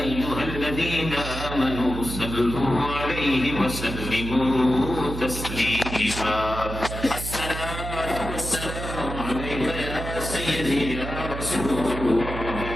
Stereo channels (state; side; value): noise; right; hum, 7 dB below the sound